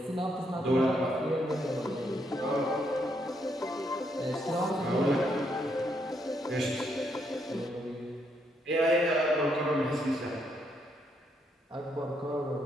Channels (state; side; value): normal; both; correlation 0.75